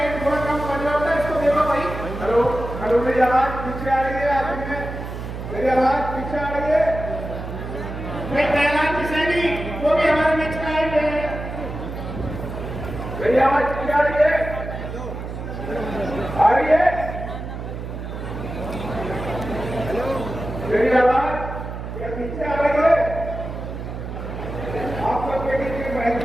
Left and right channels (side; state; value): right; noise; hum, 7 dB below the sound